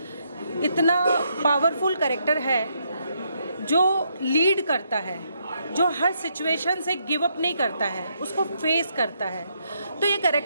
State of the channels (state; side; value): inverted; both; correlation -0.76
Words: इतना पावरफुल कैरेक्टर है जो लीड करता है, जो हर सिचुएशन से गिव अप नहीं करता है, उसको फेस करता है। तो ये